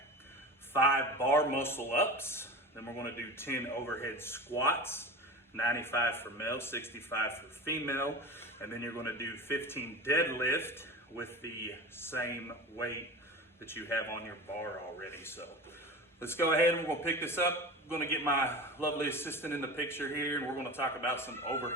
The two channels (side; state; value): both; normal; correlation 0.31